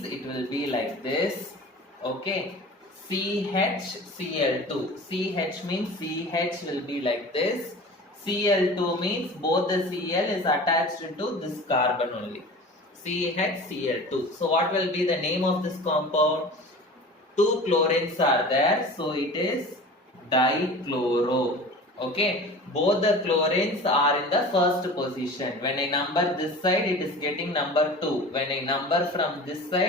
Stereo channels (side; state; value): both; normal; correlation 0.38